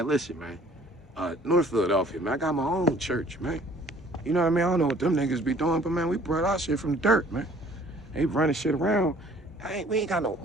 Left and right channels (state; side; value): normal; both; correlation 0.55